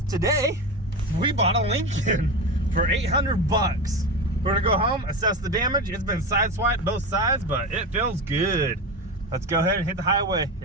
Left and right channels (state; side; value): normal; both; correlation 0.22